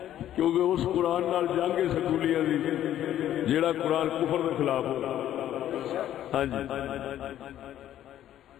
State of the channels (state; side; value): quieter; right; 11.8 dB